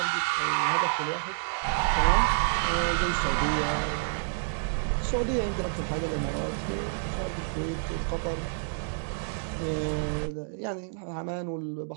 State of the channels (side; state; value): left; silent; digital silence